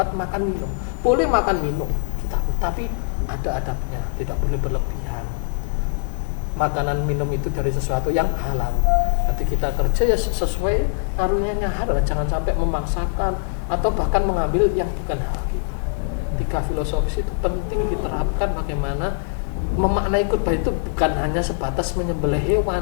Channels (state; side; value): silent; right; digital silence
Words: makan minum. Boleh makan minum kita, tapi ada adabnya, tidak boleh berlebihan. Makanan minum itu dari sesuatu yang halal. Nanti kita kerja ya sesuai karunia halal, jangan sampai memaksakan atau bahkan mengambil yang bukan hak kita. 3 filosofis itu penting diterapkan, bagaimana memaknai kurban itu bukan hanya sebatas menyembelih